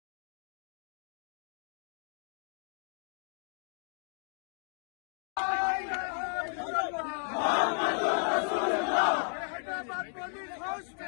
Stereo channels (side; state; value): right; silent; 54 dB below the other